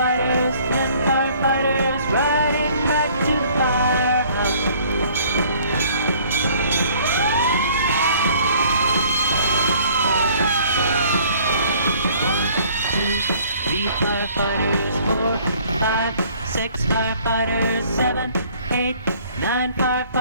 10 firefighters riding back to the firehouse. 3 firefighters, 4, 5, 6 firefighters, 7, 8, 9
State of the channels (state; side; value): inverted; both; correlation -0.56